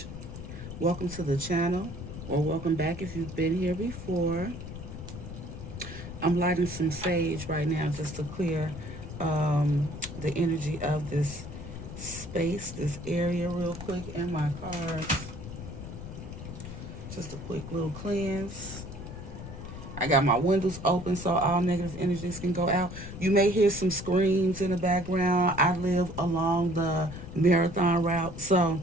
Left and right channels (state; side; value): noise; left; rumble, 10 dB below the sound